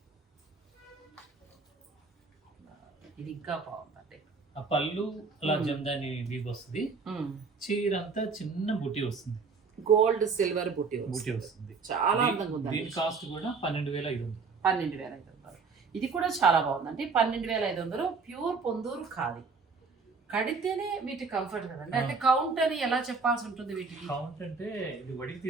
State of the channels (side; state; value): left; quieter; 4.7 dB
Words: ఇది ఇంకా బాగుందండి. ఆ పళ్ళు అలా జందాని వీవ్ వస్తుంది. చీర అంతా చిన్న బుట్టి వస్తుంది, గోల్డ్ సిల్వర్ బుట్టి వస్తుంది. చాలా అందంగా ఉంది. దీని కాస్ట్ కూడా 12,500. 12,500. ఇది కూడా చాలా బాగుందండి. 12,500. ప్యూర్ పొందూరు ఖాదీ. కడితేనే వీటి కంఫర్ట్ కదండి. అంటే కౌంట్ అని ఎలా చెప్పాల్సి ఉంటుంది వీటికి? కౌంట్ అంటే ఇది వడికి